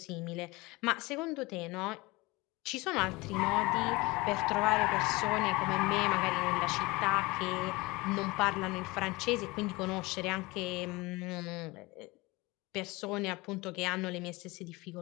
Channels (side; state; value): right; quieter; 22.9 dB